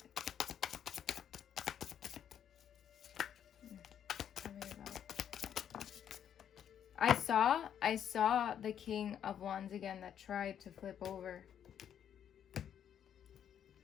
Tell me about. I saw the King of Wands again that tried to flip over.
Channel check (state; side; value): quieter; right; 9.2 dB